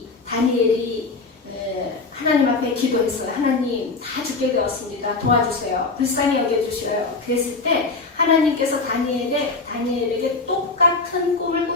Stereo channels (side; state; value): right; quieter; 3.9 dB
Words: 다니엘이 하나님 앞에 기도했어요. 하나님 다 죽게 되었습니다. 도와주세요. 불쌍히 여겨주셔요. 그랬을 때 하나님께서 다니엘에게 똑같은 꿈을